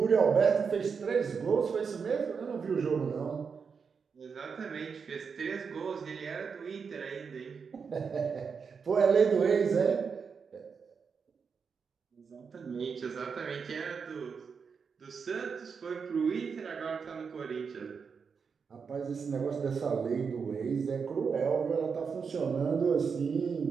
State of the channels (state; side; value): quieter; left; 5.8 dB